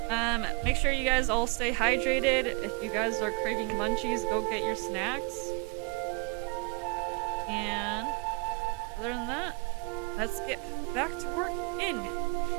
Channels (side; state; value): left; quieter; 30.9 dB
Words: Make sure you guys all stay hydrated. If you guys are craving munchies, go get your snacks. And other than that, let's get back to work in